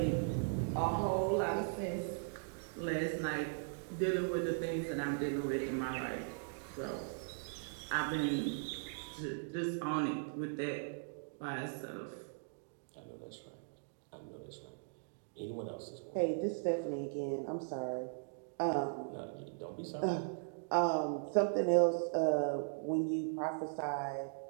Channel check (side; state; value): left; silent; digital silence